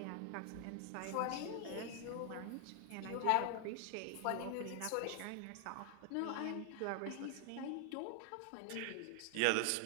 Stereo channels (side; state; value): both; different; correlation -0.01